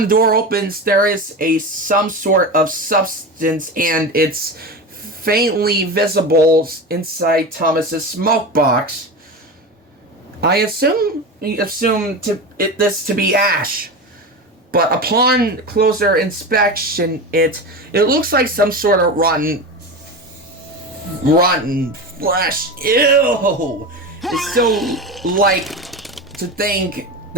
the door opens, there is some sort of substance, and it's faintly visible inside Thomas's smoke box. I assume this to be ash, but upon closer inspection, it looks like some sort of rotten flesh. Ew! It's so like to think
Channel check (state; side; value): normal; both; correlation 0.24